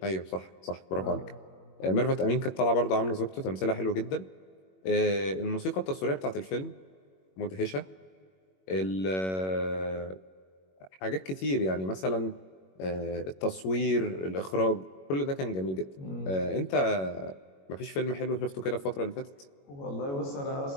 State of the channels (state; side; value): late; right; 21 ms